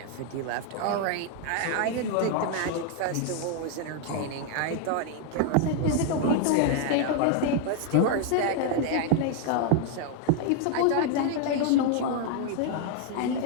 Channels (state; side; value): different; both; correlation 0.00